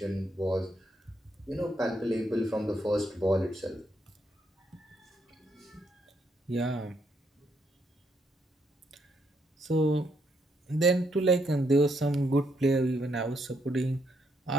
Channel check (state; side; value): normal; both; correlation 0.75